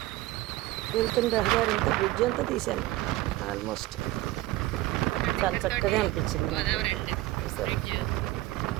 వెళ్తున్న రహదారి అంతా బ్రిడ్జ్ అంతా తీసాను ఆల్మోస్ట్. చాలా చక్కగా అనిపించింది సరే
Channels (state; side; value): quieter; left; 17.5 dB